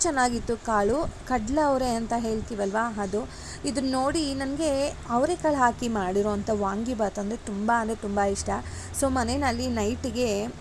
ಚೆನ್ನಾಗಿತ್ತು. ಕಾಳು ಕಡಲೆ ಅವರೆ ಅಂತ ಹೇಳ್ತೀವಲ್ವ, ಅದು. ಇದನ್ನ ನೋಡಿ ನನಗೆ ಅವರೆಕಾಳು ಹಾಕಿ ಮಾಡಿರೋವಂಥ ವಾಂಗಿಬಾತ್ ಅಂದರೆ ತುಂಬ ಇಷ್ಟ. ಸೊ ಮನೆಯಲ್ಲಿ ನೈಟಿಗೆ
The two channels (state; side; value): identical; both; correlation 1.00